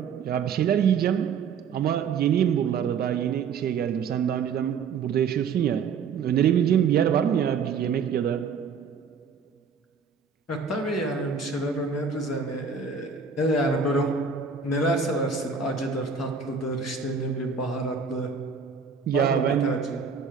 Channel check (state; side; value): quieter; left; 5.9 dB